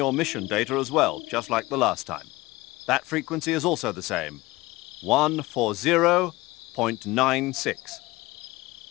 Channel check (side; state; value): right; quieter; 20.2 dB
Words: mission data as well, just like the last time. That frequency is also the same, 140.96.